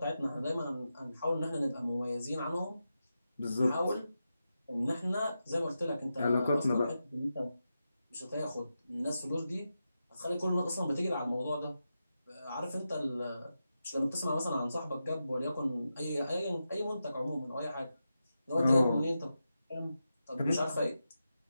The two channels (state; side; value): inverted; both; correlation -0.89